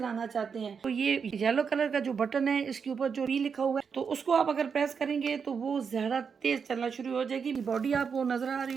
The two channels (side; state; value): left; quieter; 6.2 dB